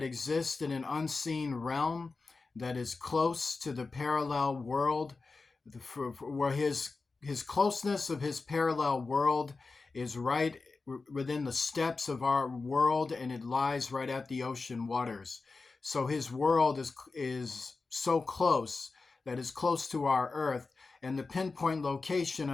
exists in an unseen realm that is close to the parallel world, where his closeness of his parallel world is right within the steps of our world, and it lies right at the ocean waters. So his world is so close that is close to our earth, and the pinpoint location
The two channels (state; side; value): quieter; right; 4.0 dB